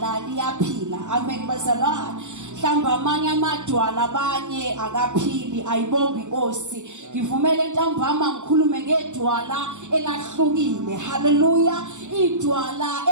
liyaphila. Amen bazalwane. Mhlamba amanye amadwala abanye akaphili ayibonga inkosi. Ngivumele ntambama ngikhulume ngeDwala elahlukile. Hallelujah. iDwala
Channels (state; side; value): late; left; 0.84 ms